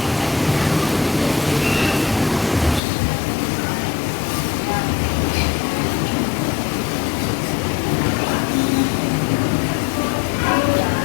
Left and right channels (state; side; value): drops out; right; at 2.8 s